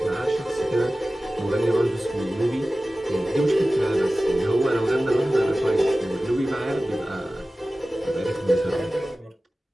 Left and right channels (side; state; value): both; normal; correlation 0.96